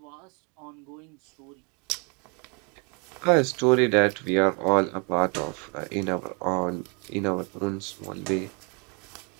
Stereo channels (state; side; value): quieter; left; 34.0 dB